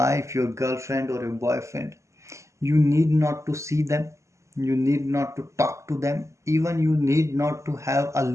your girlfriend, or your boyfriend. You need not to see them, you need not to talk to them, even you need not to have a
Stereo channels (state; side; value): late; left; 0.14 ms